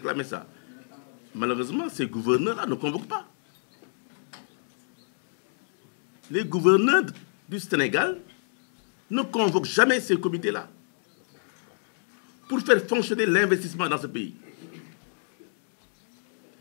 ça. Malheureusement, ces gouverneurs-là ne convoquent pas. Les gouverneurs du Sénégal ne convoquent jamais ces comités-là pour faire fonctionner l'investissement dans ce pays.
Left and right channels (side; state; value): right; silent; digital silence